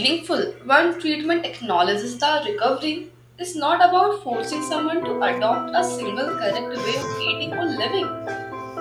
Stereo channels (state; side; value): identical; both; correlation 1.00